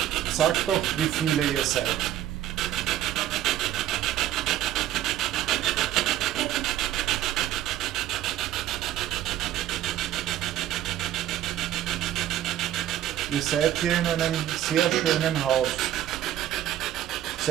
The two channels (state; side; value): quieter; left; 12.4 dB